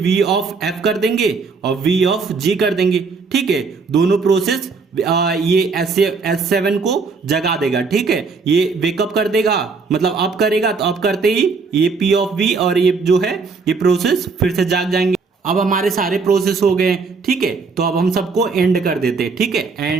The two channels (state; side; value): quieter; left; 4.6 dB